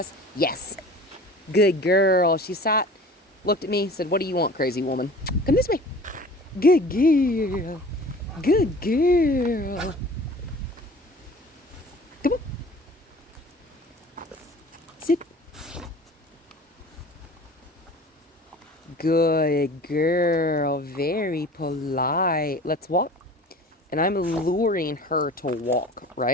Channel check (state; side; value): normal; both; correlation 0.43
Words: Yes. Good girl. She sat, looked at me, said, what do you want, crazy woman? Come this way. Good girl. Good girl. Come on. Sit. Good girl. Very polite. Let's walk. And I'm luring her to walk,